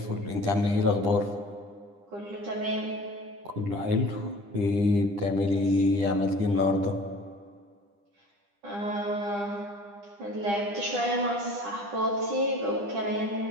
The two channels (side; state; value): left; late; 9.9 ms